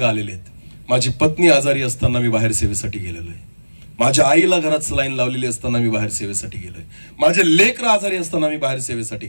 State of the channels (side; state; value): both; inverted; correlation -1.00